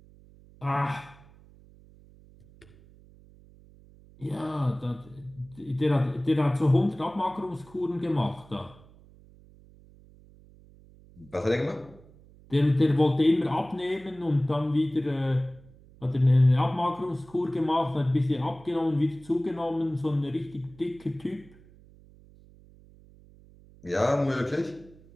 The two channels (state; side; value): noise; right; hum, 25 dB below the sound